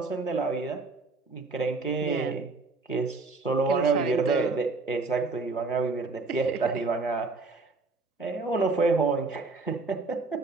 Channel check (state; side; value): quieter; left; 3.7 dB